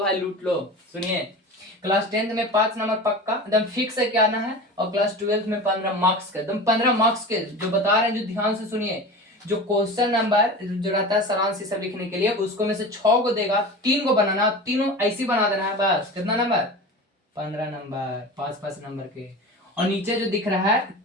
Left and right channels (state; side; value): normal; both; correlation 0.32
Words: लूट लो। सुनिए, क्लास 10th में 5 नंबर पक्का एकदम फिक्स है क्या आना है, और क्लास 12th में 15 मार्क्स के एकदम 15 मार्क्स के जो बता रहे हैं, जो ध्यान से सुनिए। जो क्वेश्चन नंबर जो रहता है सारांश सब लिखने के लिए, उसको में से 6 को देगा, 3 को बनाना, तीनों ऐसी बना देना है। बस कितना नंबर? 15 नंबर, 5-5 नंबर के। और नीचे जो दिख रहा है